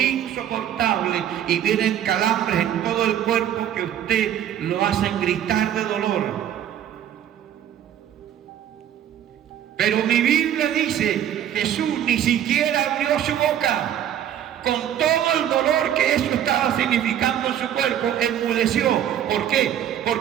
y vienen calambres en todo el cuerpo que usted lo hacen gritar de dolor. Pero mi Biblia dice, Jesús ni siquiera abrió su boca. Con todo el dolor que eso estaba significando en su cuerpo, enmudeció. ¿Por qué?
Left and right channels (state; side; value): quieter; left; 10.5 dB